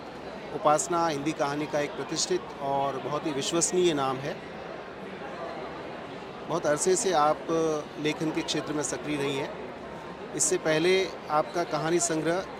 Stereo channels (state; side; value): identical; both; correlation 1.00